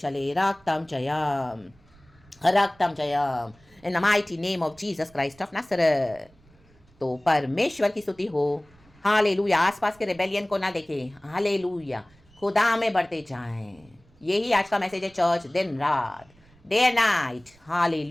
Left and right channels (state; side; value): noise; right; rumble, 29 dB below the sound